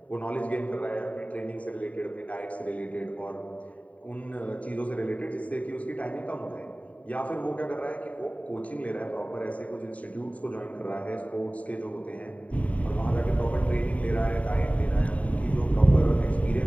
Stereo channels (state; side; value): late; right; 0.068 ms